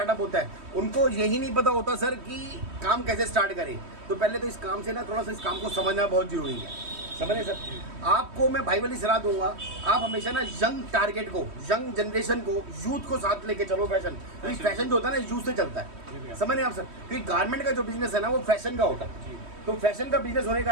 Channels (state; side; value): late; left; 3.1 ms